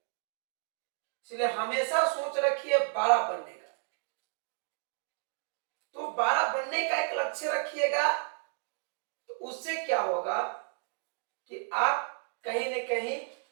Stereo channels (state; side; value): silent; left; 56 dB below the other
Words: इसलिए हमेशा सोच रखिए 12 बनने का। तो 12 बनने का एक लक्ष्य रखिएगा तो उससे क्या होगा कि आप कहीं न कहीं